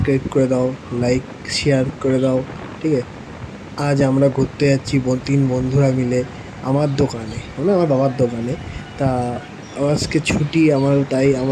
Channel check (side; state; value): both; identical; correlation 1.00